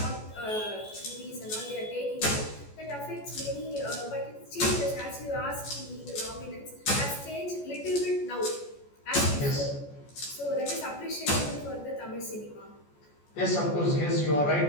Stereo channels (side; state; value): right; late; 14 ms